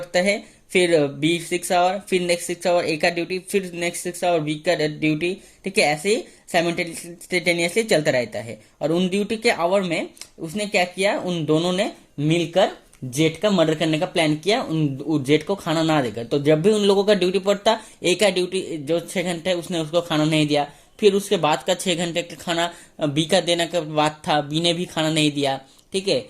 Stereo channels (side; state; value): both; identical; correlation 1.00